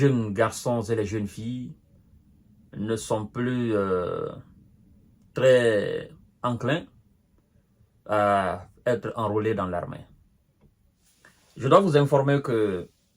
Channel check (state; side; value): identical; both; correlation 1.00